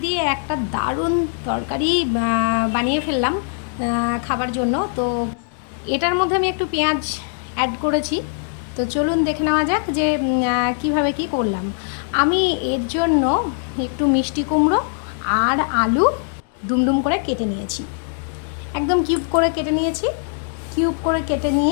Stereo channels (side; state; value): right; silent; 65 dB below the other